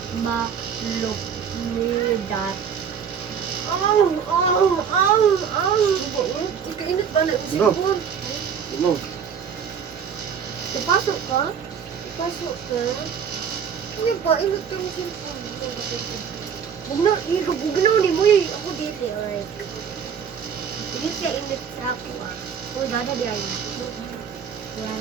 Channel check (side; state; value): left; quieter; 7.3 dB